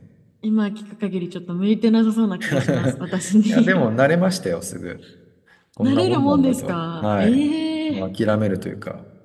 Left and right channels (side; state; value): both; identical; correlation 1.00